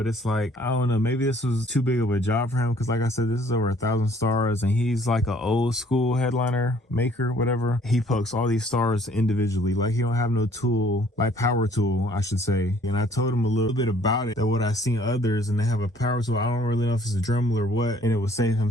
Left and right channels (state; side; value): normal; both; correlation 0.59